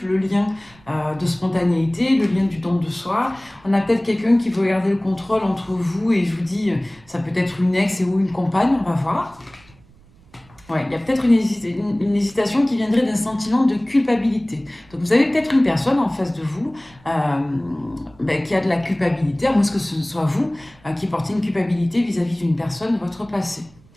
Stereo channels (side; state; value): right; noise; rumble, 27 dB below the sound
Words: le lien de spontanéité, le lien du don de soi. On a peut-être quelqu'un qui veut garder le contrôle entre vous et je vous dis, ça peut être une ex et ou une compagne, on va voir. Ouais, il y a peut-être une hésitation qui viendrait d'un sentiment de culpabilité. Donc vous avez peut-être une personne en face de vous qui a de la culpabilité, à moins que ce soit vous qui portez une culpabilité vis-à-vis d'une personne de votre passé.